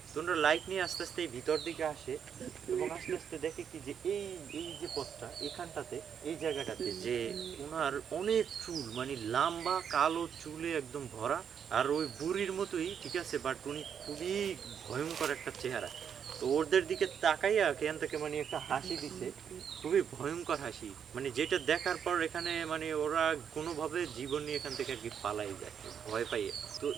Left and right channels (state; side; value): quieter; left; 7.8 dB